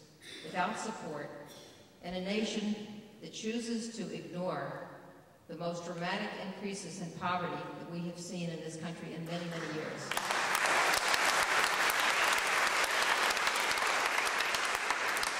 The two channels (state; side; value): identical; both; correlation 1.00